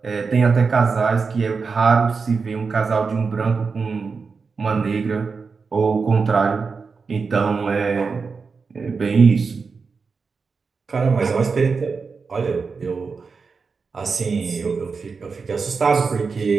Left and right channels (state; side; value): quieter; left; 4.9 dB